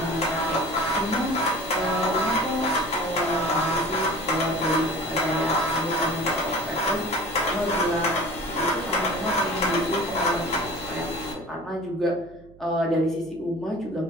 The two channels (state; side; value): noise; right; hum, 24 dB below the sound